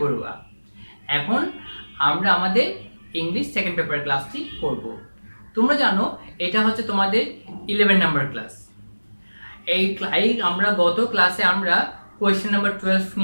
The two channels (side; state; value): both; inverted; correlation -1.00